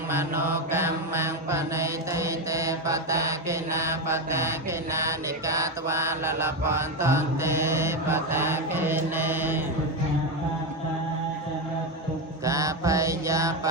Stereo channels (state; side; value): normal; both; correlation 0.11